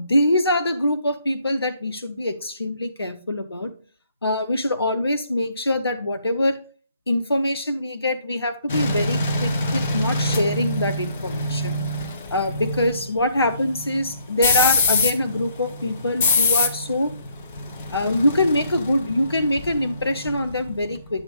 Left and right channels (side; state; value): both; inverted; correlation -0.69